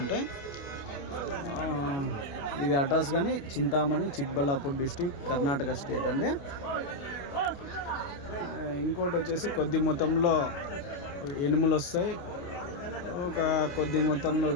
ఇది అడ్రస్ కానీ చింతామణి, చిక్బల్లాపూర్ డిస్టిక్, కర్ణాటక స్టేట్ అండి. ఇంకోటి వచ్చేసి కొద్ది మొత్తంలో ఎనుములు వస్తాయి, ఒక కొద్ది మొత్తంలో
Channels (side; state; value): right; late; 29 ms